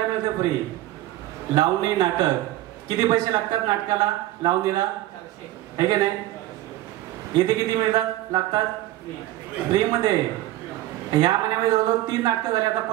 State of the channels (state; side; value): quieter; left; 15.5 dB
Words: मिळते फ्री. लावणी नाटक किती पैसे लागतात नाटकाला, लावणीला, आहे की नाही. इथे किती मिळतात, लागतात फ्री मध्ये. ह्या महिन्यामध्ये जवळजवळ 3 नाटकं झाली. आता